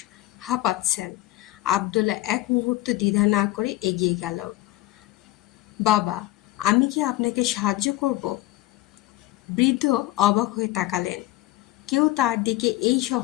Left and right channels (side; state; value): right; quieter; 17.2 dB